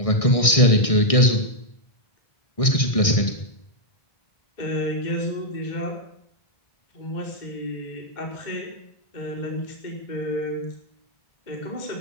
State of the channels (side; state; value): right; late; 1.6 ms